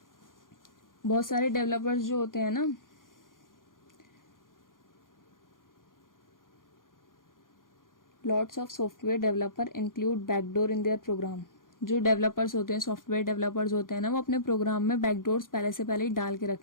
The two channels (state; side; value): late; right; 0.90 ms